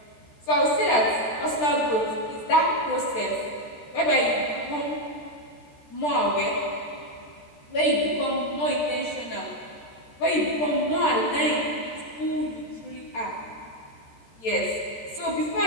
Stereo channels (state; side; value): late; right; 13 ms